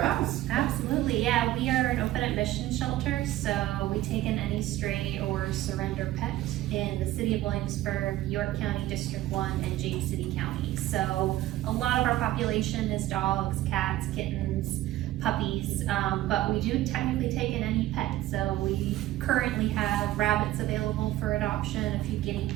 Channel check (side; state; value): left; quieter; 15.1 dB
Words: else. Absolutely, yeah. We are an open admission shelter, so we take in any stray or surrender pet in the city of Williamsburg, York County, District 1, and James City County. So a lot of our population is dogs, cats, kittens, puppies, but we do technically take in any pet. So we currently have rabbits available for adoption, a few guinea